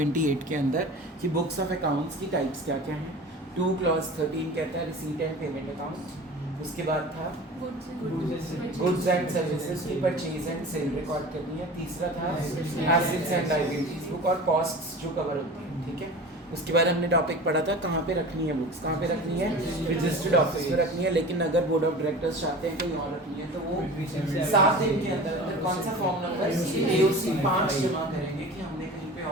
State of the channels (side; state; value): both; normal; correlation 0.36